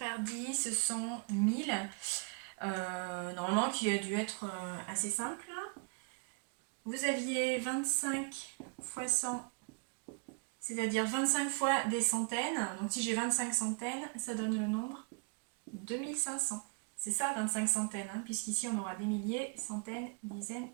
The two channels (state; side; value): quieter; left; 34.5 dB